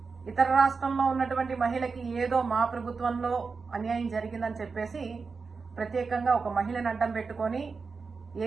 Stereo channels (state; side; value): quieter; left; 4.8 dB